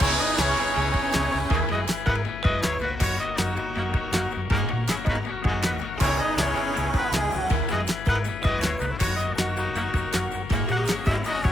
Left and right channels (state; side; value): noise; left; hum, 11 dB below the sound